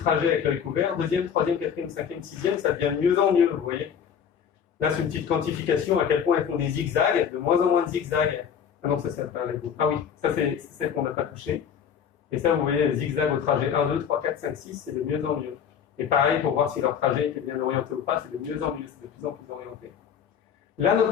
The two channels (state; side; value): quieter; right; 7.9 dB